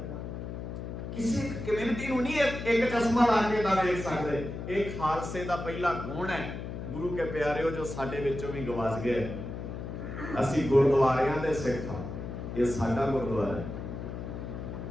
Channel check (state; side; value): noise; left; hum, 7 dB below the sound